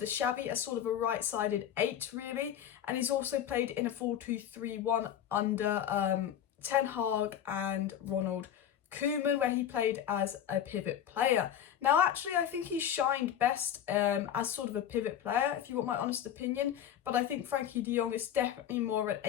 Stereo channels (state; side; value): quieter; right; 9.9 dB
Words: Xavi as sort of a right-sided 8, really. And he's also played in a 4-2-3-1 under Ten Hag and Ronald Koeman, where he played as a pivot player. Now, actually, I think he shined best as sort of a pivot player, if you want my honest opinion. But I think Frenkie de Jong is definitely more an